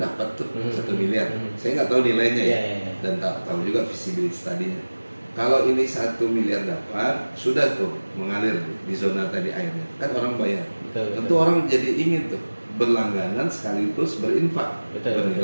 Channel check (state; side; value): inverted; both; correlation -1.00